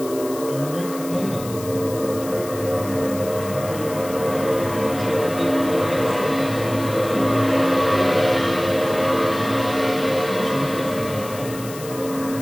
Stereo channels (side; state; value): left; noise; hiss, 14 dB below the sound